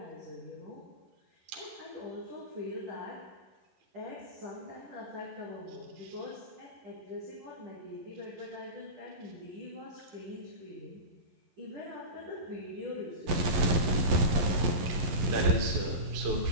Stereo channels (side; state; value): left; late; 11 ms